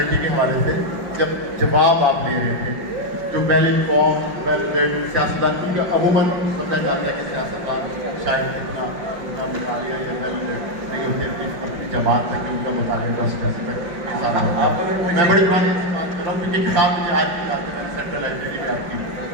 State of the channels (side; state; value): left; late; 5.4 ms